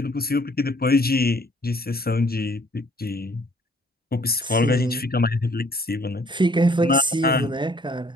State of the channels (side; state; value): both; normal; correlation 0.60